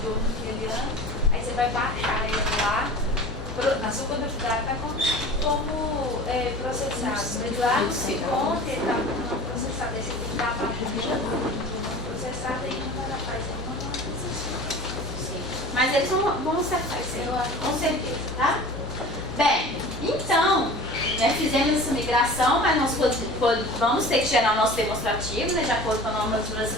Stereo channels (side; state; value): both; normal; correlation 0.39